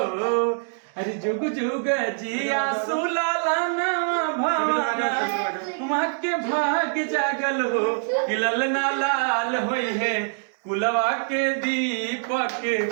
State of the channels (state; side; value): silent; left; digital silence